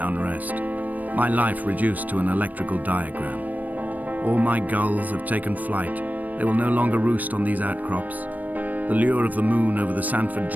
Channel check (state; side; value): late; left; 0.080 ms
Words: unrest. My life reduced to an electrical diagram. All my gulls have taken flight. They will no longer roost on these outcrops. The lure of the moon over the Sanford